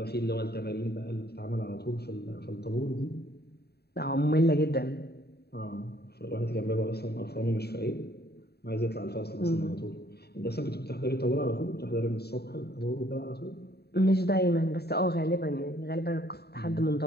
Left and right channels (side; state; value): right; late; 0.47 ms